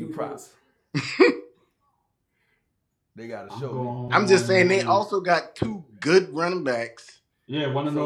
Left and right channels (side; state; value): both; identical; correlation 1.00